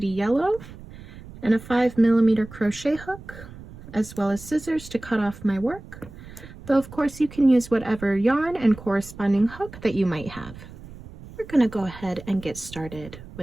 Yellow, and a 5mm crochet hook, as well as scissors to cut off my work, though of course you can use whatever yarn and corresponding hook that you might have. We're going to go ahead and get started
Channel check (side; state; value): right; noise; rumble, 16 dB below the sound